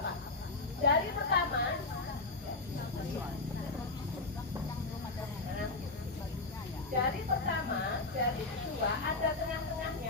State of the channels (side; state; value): right; quieter; 3.4 dB